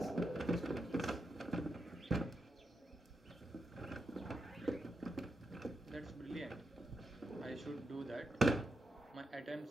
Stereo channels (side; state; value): both; normal; correlation 0.85